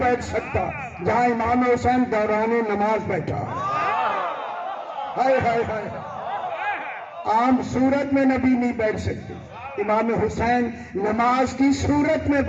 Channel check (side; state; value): both; identical; correlation 1.00